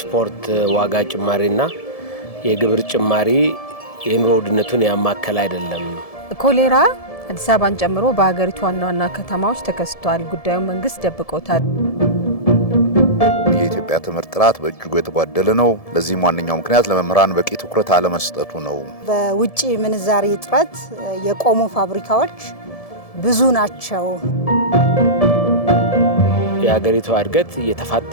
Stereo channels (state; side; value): late; right; 1.7 ms